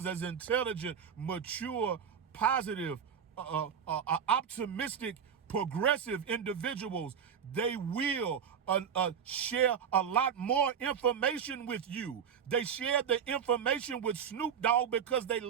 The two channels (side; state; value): left; quieter; 7.6 dB